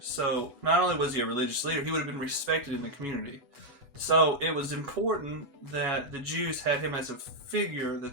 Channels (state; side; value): late; left; 8.1 ms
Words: So not only was he a religious leader, he would have been respected in the community. So it was important that the Jews had him as a figure